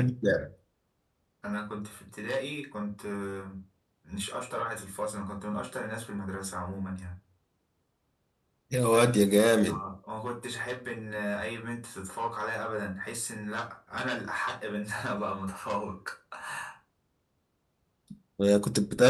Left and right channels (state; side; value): identical; both; correlation 1.00